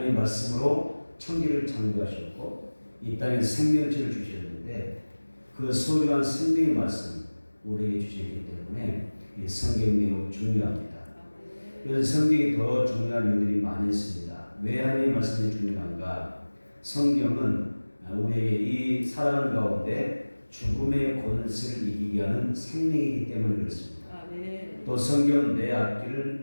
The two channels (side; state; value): both; inverted; correlation -1.00